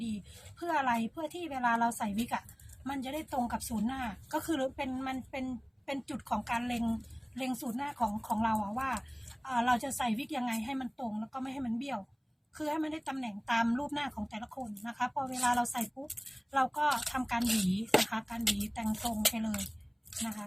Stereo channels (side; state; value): both; identical; correlation 1.00